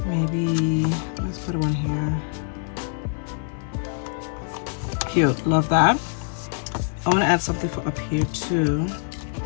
maybe, let's put one here. Cute, love that. I want to add something for up here too.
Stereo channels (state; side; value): silent; right; digital silence